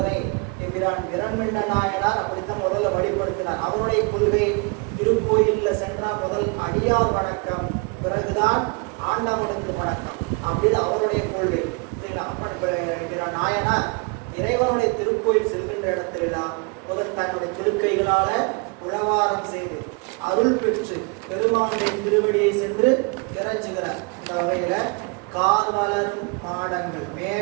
என்கிறான் விரண்மிண்ட நாயனார் அப்படித்தான் முதல்ல வழிபடுத்தினார். அவருடைய கொள்கை திருக்கோயிலில் சென்றால் முதல் அடியார் வணக்கம், பிறகுதான் ஆண்டவனுக்கு வணக்கம் அப்படின்னு அவருடைய கொள்கை. நாயனார் இறைவனுடைய திருக்கோயில் செல்கின்ற இடத்திலெல்லாம் முதல் தன்னுடைய திருக்கைகளால உழவாரம் செய்து அருள் பெற்று பெருமானுடைய திருவடியை சென்று இறைஞ்சுகிறார். இந்த வகையில கார் வளரும் மாடங்கள்,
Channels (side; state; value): left; quieter; 31.8 dB